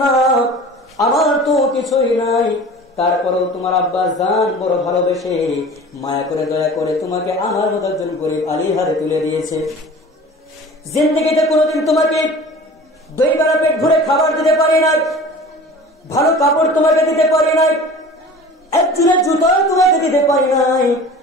না, আমার তো কিছুই নাই, তারপরেও তোমার আব্বা জান বড় ভালোবেসে মায়া করে দয়া করে তোমাকে আমার মতো একজন গরিব আলীর হাতে তুলে দিয়েছে। জিন্দেগিতে কোনোদিন তোমাকে 2 বেলা পেট ভরে খাবার দিতে পারি নাই, ভালো কাপড় তোমাকে দিতে পারি নাই, একজনের জুতো তোমাকে দিতে পারি নাই।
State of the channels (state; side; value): normal; both; correlation 0.41